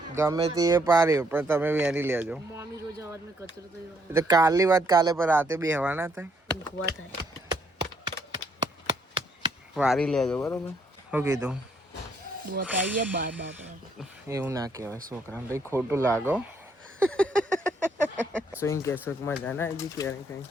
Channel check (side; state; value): both; normal; correlation 0.70